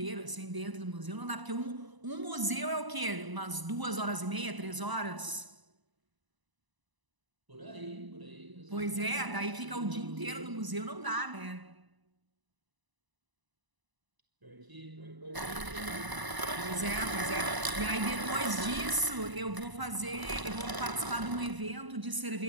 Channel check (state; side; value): late; left; 1.0 ms